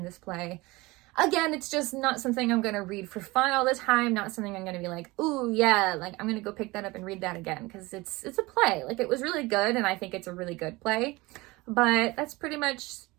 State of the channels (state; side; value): quieter; left; 22.0 dB